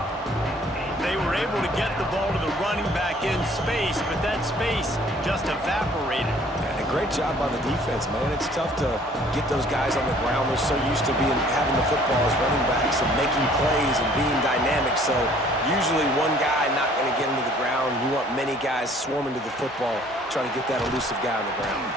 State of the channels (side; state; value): both; normal; correlation 0.56